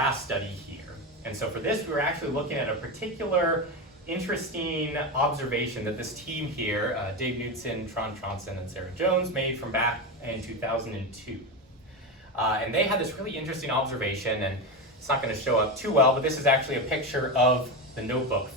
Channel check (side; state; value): both; normal; correlation 0.17